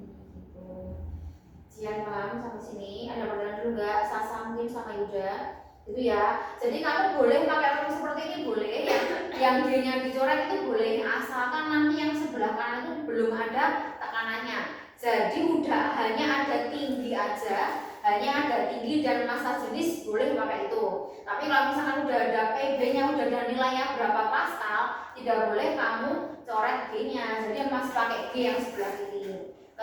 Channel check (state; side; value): identical; both; correlation 1.00